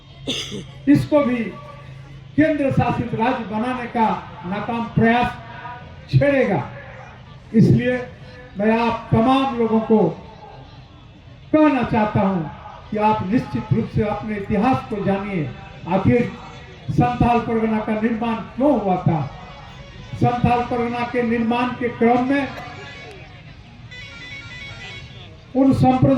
इसको भी केंद्र शासित राज्य बनाने का नाकाम प्रयास छेड़ेगा। इसलिए मैं आप तमाम लोगों को कहना चाहता हूं कि आप निश्चित रूप से अपने इतिहास को जानिए। आखिर संथाल परगना का निर्माण क्यों हुआ था? संथाल परगना के निर्माण के क्रम में उन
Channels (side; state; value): both; identical; correlation 1.00